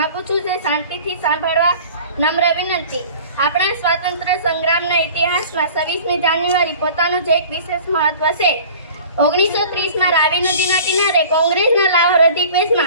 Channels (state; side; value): inverted; both; correlation -0.44